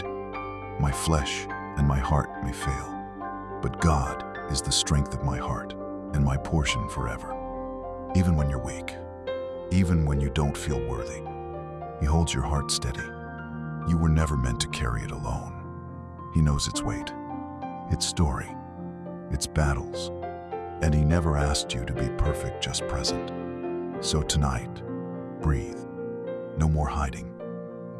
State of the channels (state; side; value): identical; both; correlation 1.00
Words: My flesh and my heart may fail, but God is the strength of my heart and my portion forever. Even when you're weak, even when you don't feel worthy, he holds your heart steady. You were never meant to carry it alone. He knows its weight, its story, its battles, and he never asked you to be perfect, just present. So tonight, breathe. No more hiding,